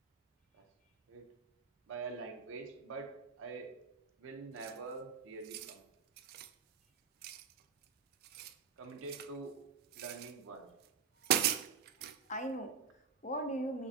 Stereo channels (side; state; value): left; quieter; 6.5 dB